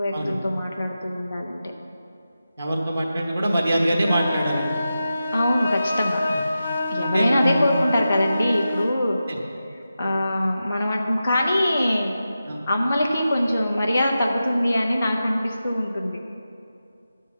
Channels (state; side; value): inverted; both; correlation -0.91